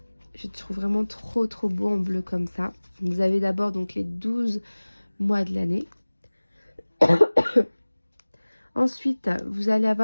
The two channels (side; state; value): both; inverted; correlation -1.00